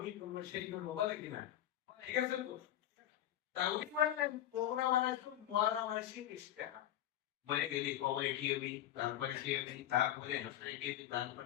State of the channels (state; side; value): quieter; right; 12.4 dB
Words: করবো, সেই করবো, বলে কিনা? ঠিক আছে তো? তা উনি বললেন তোমরা বানাইছো মরা মানুষের ইশতেহার। মরে গেলি কবরে কি হবি, তারপরে কি হবি, তারপরে হাসরে কি হবি,